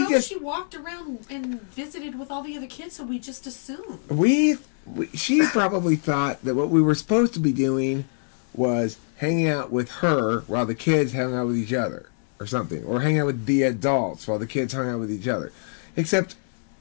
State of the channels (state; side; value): silent; right; digital silence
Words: She walked around and visited with all the other kids, so we just assumed. She probably thought that what we were supposed to be doing was hanging out with her while the kids hung out with each other, or something, or hanging out with the adults while the kids hung out with each other. Except